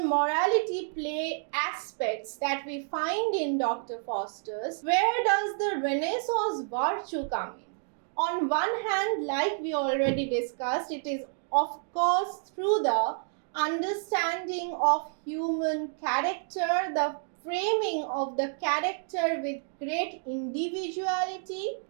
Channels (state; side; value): silent; left; digital silence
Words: play aspects that we find in Dr. Faustus? Where does the Renaissance virtue come in? On one hand, like we already discussed, it is of course through the understanding of human character, the framing of the character with great individuality.